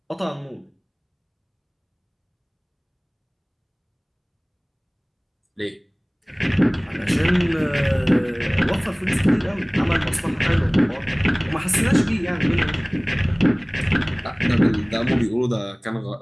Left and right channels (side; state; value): both; identical; correlation 1.00